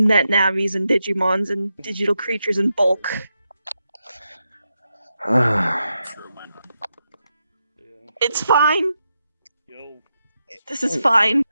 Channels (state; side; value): inverted; both; correlation -0.86